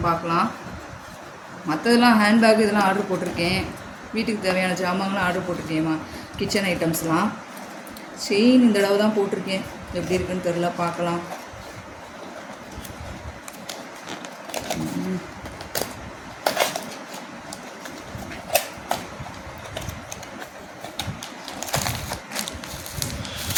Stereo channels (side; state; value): both; identical; correlation 1.00